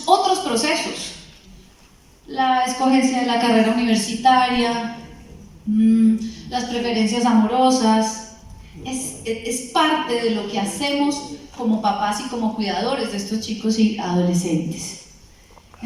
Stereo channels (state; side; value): identical; both; correlation 1.00